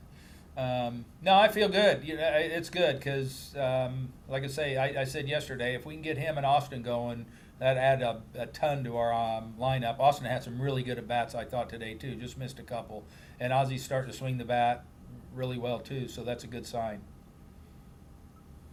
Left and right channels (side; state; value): both; identical; correlation 1.00